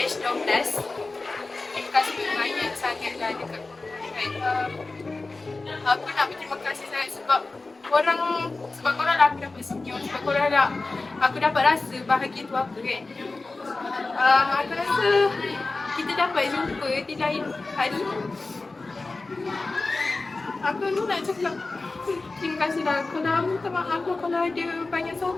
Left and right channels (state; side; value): quieter; right; 3.5 dB